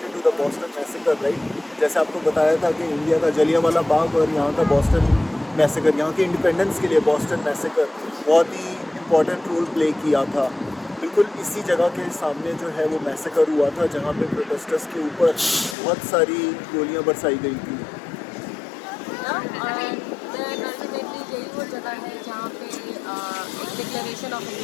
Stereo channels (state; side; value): drops out; right; at 15.8 s